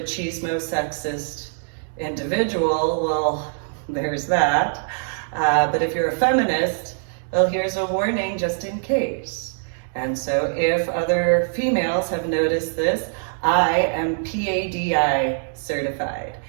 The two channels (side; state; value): left; silent; digital silence